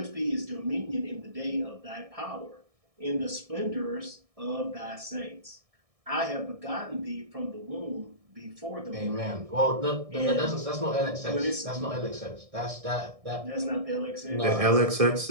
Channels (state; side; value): late; left; 1.6 ms